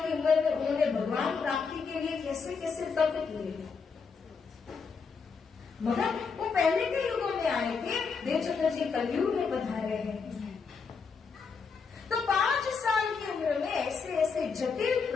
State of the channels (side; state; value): right; quieter; 5.4 dB